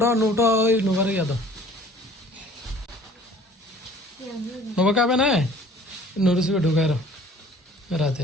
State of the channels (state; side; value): normal; both; correlation 0.51